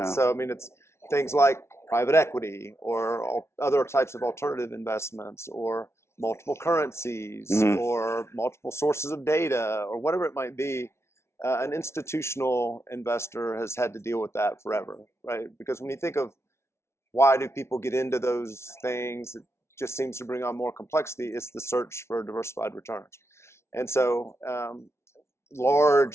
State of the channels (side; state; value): right; late; 0.13 ms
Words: So, I mean, it's things like private equity or other types of alternative investments or multiple currencies or multiple sources of data or whatever it might be. An institutional investor has had to deal with that forever, right? Because when you think of why do people get into those things, it just seems to bring on more complexity. It's the search for diversified returns. And so